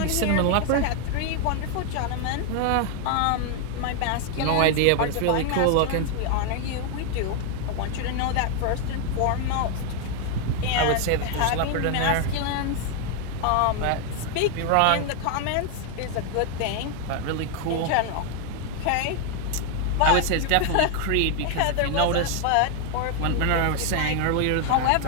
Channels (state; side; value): different; both; correlation 0.01